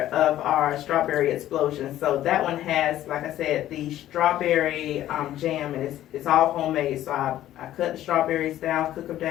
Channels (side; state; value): right; quieter; 13.1 dB